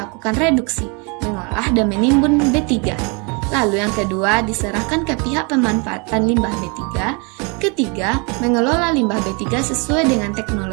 reduksi, mengolah dan menimbun B3. Lalu yang kedua, diserahkan ke pihak pemanfaatan limbah B3. Ketiga, mengelola limbah B3 sesuai dengan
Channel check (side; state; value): left; quieter; 32.4 dB